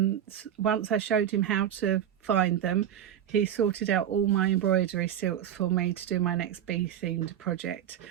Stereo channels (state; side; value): quieter; left; 10.1 dB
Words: once I showed him how to find them, he sorted out all my embroidery silks for me to do my next bee themed project,